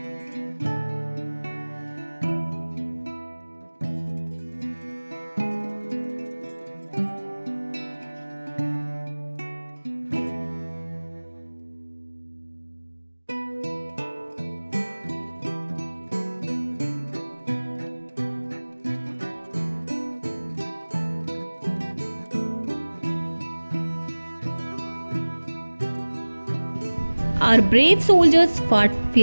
Our brave soldiers fought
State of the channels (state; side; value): inverted; both; correlation -1.00